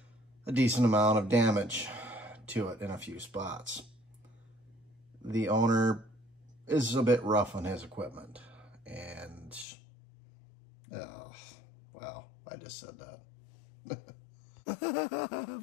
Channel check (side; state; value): right; drops out; at 9.7 s